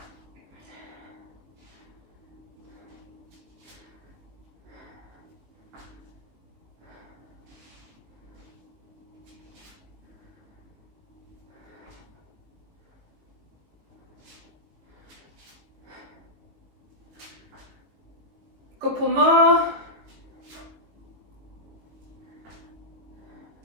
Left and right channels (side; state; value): left; late; 19 ms